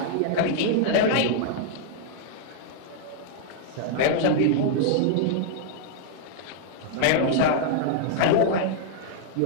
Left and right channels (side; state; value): both; different; correlation -0.01